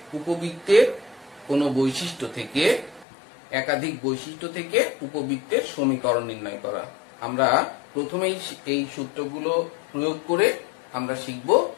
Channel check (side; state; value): right; drops out; at 3.1 s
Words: উপবৃত্তের কোনো বৈশিষ্ট্য থেকে একাধিক বৈশিষ্ট্য থেকে উপবৃত্তের সমীকরণ নির্ণয় করা। আমরা প্রথমেই এই সূত্রগুলো প্রয়োগ করে আমরা শিখব